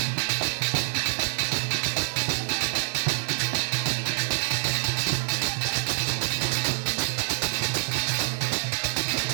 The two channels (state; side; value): silent; left; digital silence